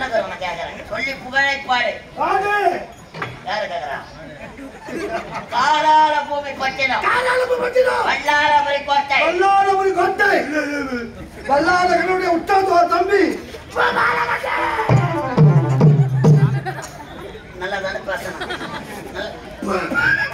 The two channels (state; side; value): identical; both; correlation 1.00